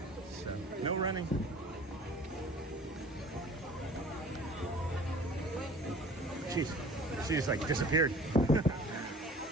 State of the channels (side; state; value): both; normal; correlation 0.46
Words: So, no running. Jeez, she just like disappeared.